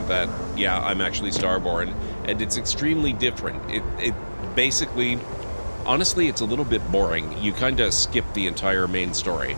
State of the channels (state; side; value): inverted; both; correlation -1.00